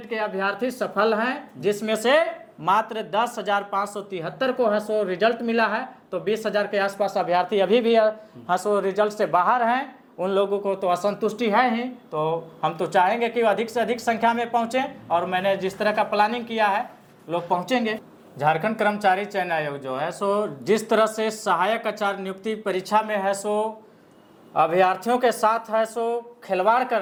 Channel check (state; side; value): identical; both; correlation 1.00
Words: के अभ्यर्थी सफल हैं, जिसमें से मात्र 10,573 को है सो रिजल्ट मिला है। तो 20,000 के आसपास अभ्यर्थी अभी भी है सो रिजल्ट से बाहर हैं। उन लोगों को तो असंतुष्टि है ही, तो हम तो चाहेंगे कि अधिक से अधिक संख्या में पहुंचे, और मैंने जिस तरह का प्लानिंग किया है लोग पहुंचेंगे। झारखंड कर्मचारी चयन आयोग जो है सो जिस तरह से सहायक आचार्य नियुक्ति परीक्षा में है सो अभ्यर्थियों के साथ है सो खिलवाड़ कर